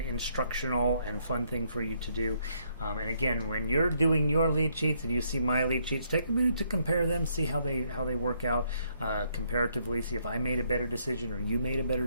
and fun thing for you to do. And again, when you're doing your lead sheets and you see my lead sheets, take a minute to compare them, see how they work out comparatively, see if I made a better decision or you made a better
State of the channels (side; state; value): both; inverted; correlation -0.72